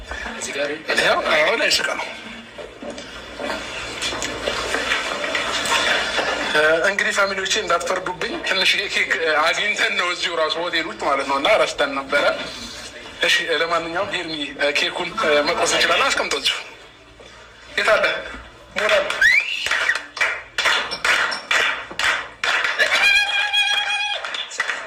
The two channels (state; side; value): identical; both; correlation 1.00